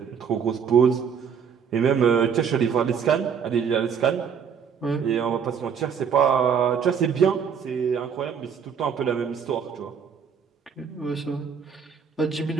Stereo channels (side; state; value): left; quieter; 7.0 dB